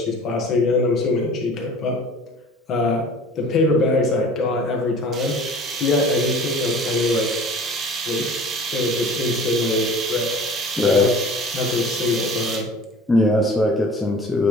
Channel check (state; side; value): normal; both; correlation 0.44